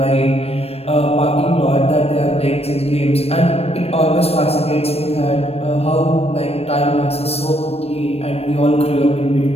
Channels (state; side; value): late; right; 0.29 ms